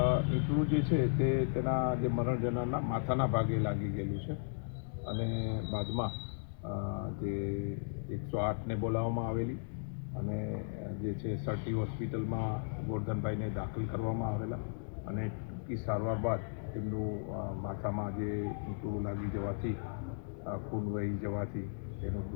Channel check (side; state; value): right; silent; digital silence